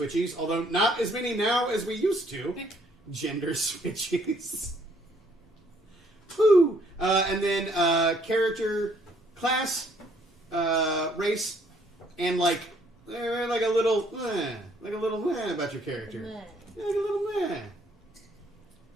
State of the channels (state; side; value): normal; both; correlation 0.65